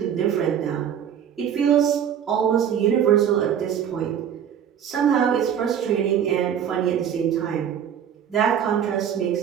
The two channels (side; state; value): left; quieter; 8.8 dB